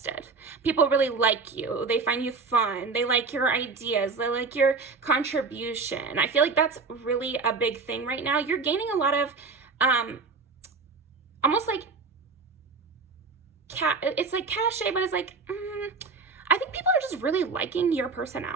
People really like you. They find you fun. They like your ideas. They like your contribution. I feel like that's really a big thing right now. You're gaining a lot of almost like it's like cachet, but it's like I think people are just really liking your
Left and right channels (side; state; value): left; quieter; 4.4 dB